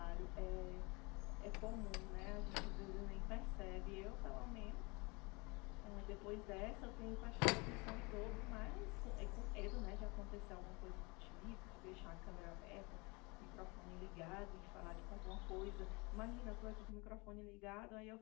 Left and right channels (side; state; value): right; quieter; 27.5 dB